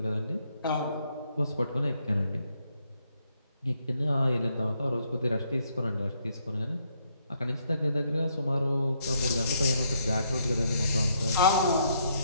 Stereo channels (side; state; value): both; inverted; correlation -0.73